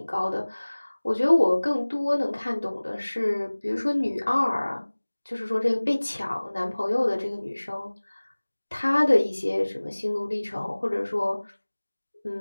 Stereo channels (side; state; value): both; inverted; correlation -1.00